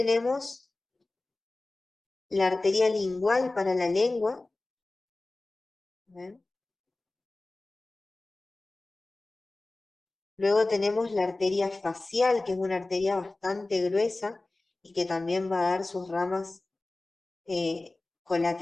la arteria lingual para la lengua. ¿Ven? Luego tenemos la arteria facial, que es una arteria bastante gruesa y que también va a dar sus ramas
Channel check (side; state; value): right; quieter; 3.0 dB